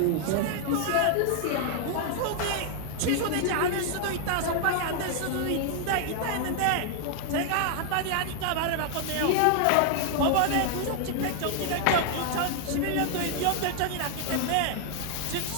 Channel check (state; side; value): different; both; correlation 0.00